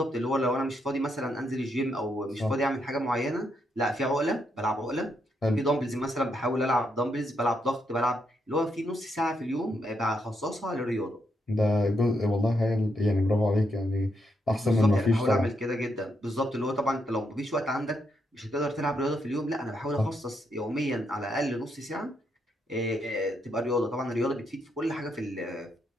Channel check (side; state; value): both; normal; correlation 0.79